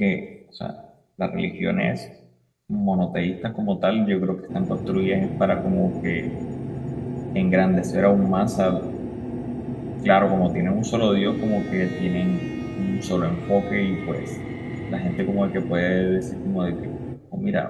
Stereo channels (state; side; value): identical; both; correlation 1.00